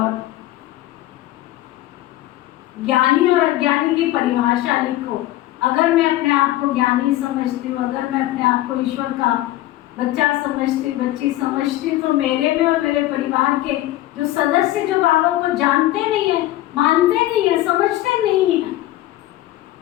ज्ञानी और अज्ञानी की परिभाषा लिखो। अगर मैं अपने आप को ज्ञानी समझती हूँ, अगर मैं अपने आप को ईश्वर का बच्चा समझती, बच्ची समझती, तो मेरे में और मेरे परिवार के जो सदस्य जो बाबा को जानते नहीं है, मानते नहीं है, समझते नहीं है,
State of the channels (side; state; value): right; quieter; 15.6 dB